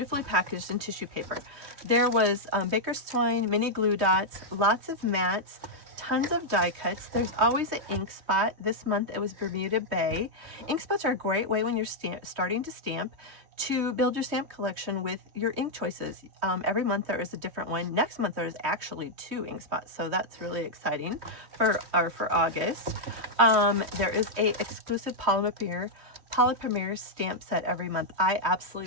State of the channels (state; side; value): late; left; 3.1 ms